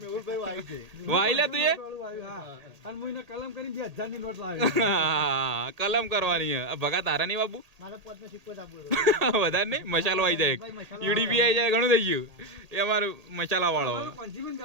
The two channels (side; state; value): left; late; 1.8 ms